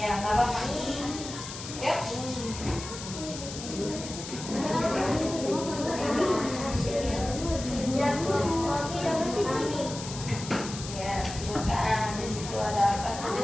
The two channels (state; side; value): noise; left; hiss, 10 dB below the sound